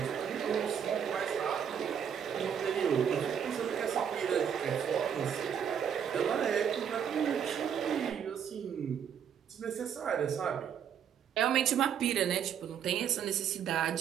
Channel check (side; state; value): left; quieter; 8.2 dB